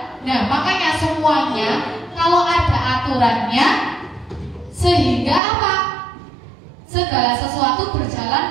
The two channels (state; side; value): drops out; left; at 5.4 s